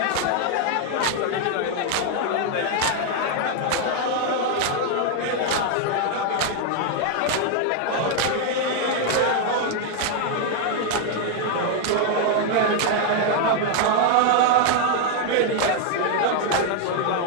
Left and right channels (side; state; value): both; different; correlation 0.00